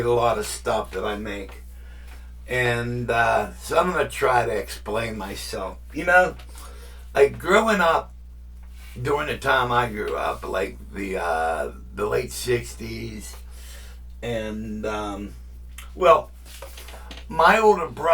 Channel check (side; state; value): both; identical; correlation 1.00